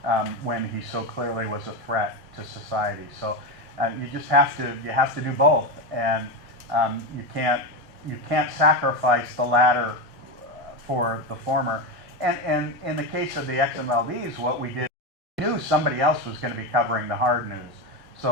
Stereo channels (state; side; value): normal; both; correlation 0.15